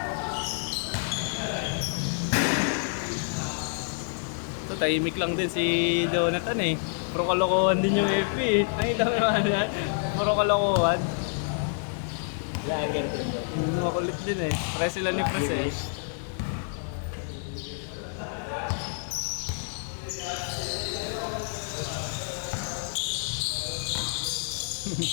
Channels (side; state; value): right; silent; digital silence